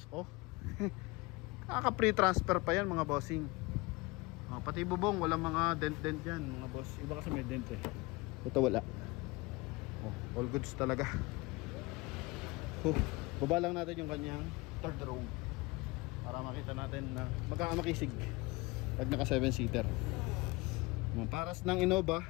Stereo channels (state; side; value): quieter; right; 23.9 dB